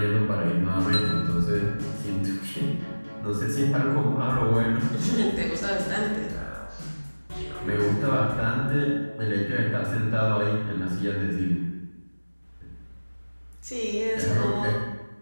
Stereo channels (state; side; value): inverted; both; correlation -1.00